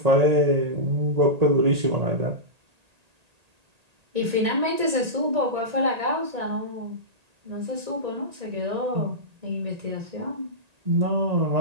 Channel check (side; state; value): left; late; 1.8 ms